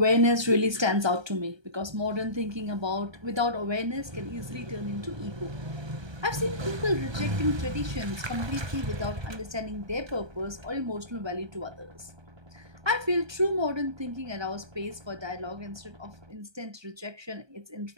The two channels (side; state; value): left; late; 1.3 ms